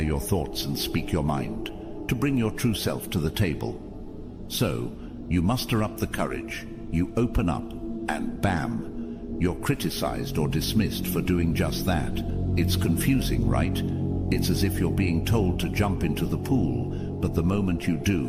your thoughts and speak your mind, to bring your true self to the table. So, you muster up the courage, you open up, and bam! you're criticized or dismissed for doing just that. It's confusing, right? It's as if you're being told to jump into the pool, but the moment you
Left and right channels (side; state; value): both; identical; correlation 1.00